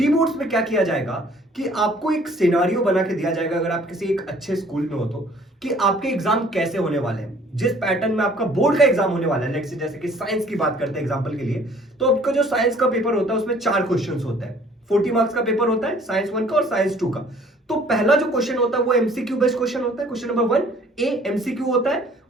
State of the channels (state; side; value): normal; both; correlation 0.56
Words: बोर्ड्स में क्या किया जाएगा कि आपको एक सिनारियो बना के दिया जाएगा, अगर आप किसी एक अच्छे स्कूल में हो तो, कि आपके एग्जाम कैसे होने वाले हैं, जिस पैटर्न में आपका बोर्ड का एग्जाम होने वाला है। लेट्स से जैसे कि साइंस की बात करते हैं एग्जांपल के लिए, तो आपका जो साइंस का पेपर होता है उसमें 4 क्वेश्चंस होते हैं। 40 मार्क्स का पेपर होता है साइंस 1 का और साइंस 2 का। तो पहला जो क्वेश्चन होता है वो एमसीक्यू बेस्ड क्वेश्चन होता है, क्वेश्चन नंबर 1 ए एमसीक्यू होता है।